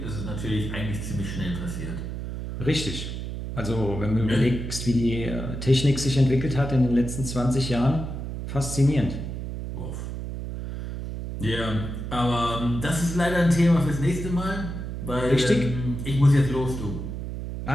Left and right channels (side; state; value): right; noise; hum, 6 dB below the sound